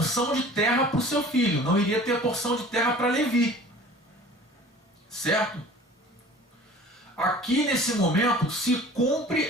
de terra para o seu filho, não iria ter porção de terra para Levi, certo? Aqui nesse momento se cumpre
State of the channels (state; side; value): normal; both; correlation 0.45